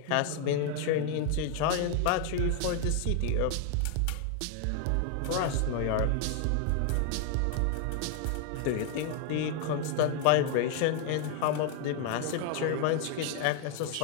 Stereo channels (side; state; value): both; different; correlation 0.00